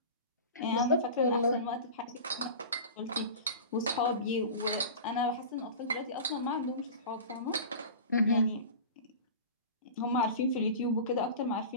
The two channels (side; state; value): both; inverted; correlation -0.34